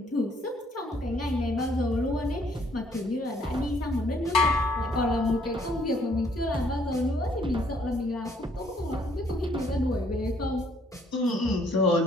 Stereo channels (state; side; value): normal; both; correlation 0.65